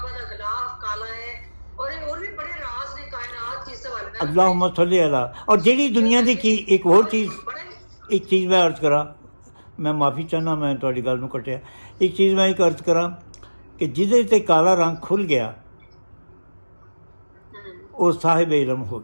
ਦਾ ਗਿਲਾਫ ਕਾਲਾ ਹੈ, ਔਰ ਇਹ ਹੋਰ ਵੀ ਬੜੇ ਰਾਜ਼ ਨੇ ਕਾਇਨਾਤ ਜਿਸ ਹਵਾਲੇ ਨਾਲ। ਅੱਲਾਹੁம்ம ਸੱਲੀ ਅਲਾ। ਔਰ ਜਿਹੜੀ ਦੁਨੀਆ ਦੀ ਕੀ ਇੱਕ ਹੋਰ ਚੀਜ਼, ਇੱਕ ਚੀਜ਼ ਮੈਂ ਅਰਜ਼ ਕਰਾਂ, ਮੈਂ ਮਾਫੀ ਚਾਹੁੰਦਾ ਮੈਂ ਤੁਹਾਡੀ ਗੱਲ ਨੂੰ ਕੱਟਿਆ। ਇੱਕ ਚੀਜ਼ ਮੈਂ ਇੱਕ ਅਰਜ਼ ਕਰਾਂ ਕਿ ਜਿਹਦੇ 'ਤੇ ਕਾਲਾ ਰੰਗ ਖੁੱਲ੍ਹ ਗਿਆ ਉਹ ਸਾਹਿਬ ਇਲਮ ਹੋ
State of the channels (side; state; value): both; inverted; correlation -1.00